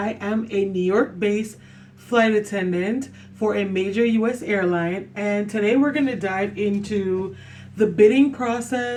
am a New York-based flight attendant for a major U.S. airline, and today we're going to dive into the bidding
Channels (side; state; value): both; identical; correlation 1.00